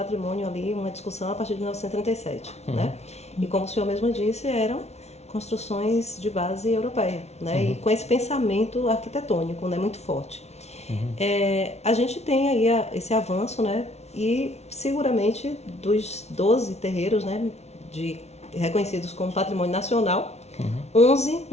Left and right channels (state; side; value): late; right; 0.31 ms